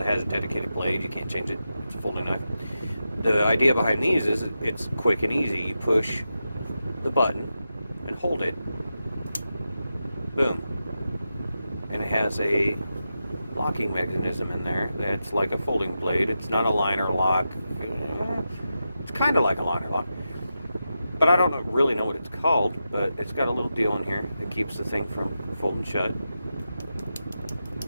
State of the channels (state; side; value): inverted; both; correlation -0.89